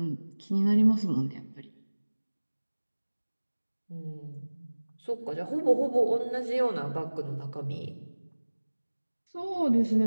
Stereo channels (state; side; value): inverted; both; correlation -1.00